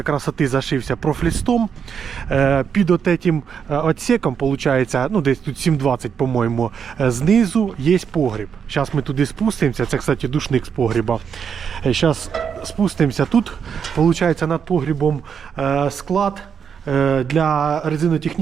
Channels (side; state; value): left; quieter; 7.2 dB